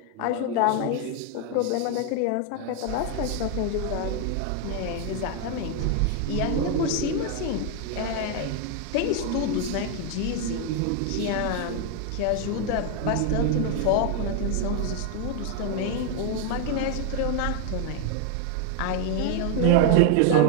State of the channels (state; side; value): different; both; correlation 0.01